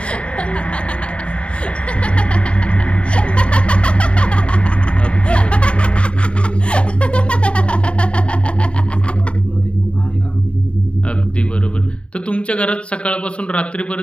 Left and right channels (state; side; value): late; right; 0.058 ms